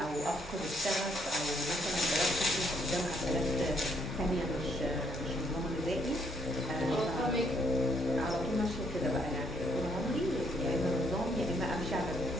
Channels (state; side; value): normal; both; correlation 0.70